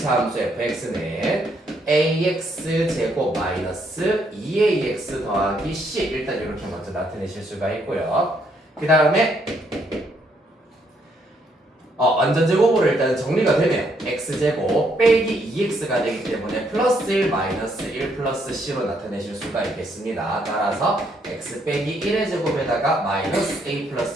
함수 fx는 ax 제곱 마이너스 2ax 더하기 c 일단 이렇게 먼저 나타내실 수가 있고요. 그 다음에 완전제곱으로 일단 정리가 되면 x제곱 빼기 2x가 되기 때문에 플러스 1 마이너스 1 플러스 c로 나타내실 수가 있겠습니다. 따라서 x 빼기 1의 제곱에다가 마이너스 a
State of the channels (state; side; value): normal; both; correlation 0.72